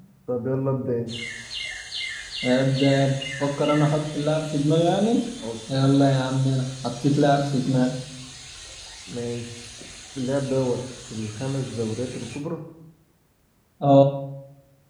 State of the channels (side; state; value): both; identical; correlation 1.00